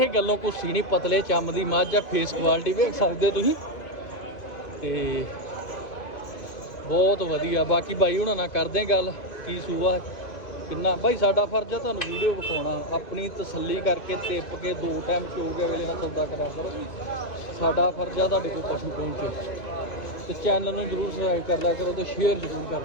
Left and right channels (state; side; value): late; right; 2.4 ms